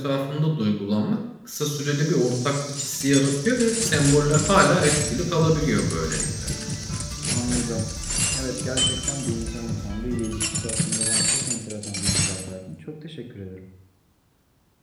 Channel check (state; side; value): identical; both; correlation 1.00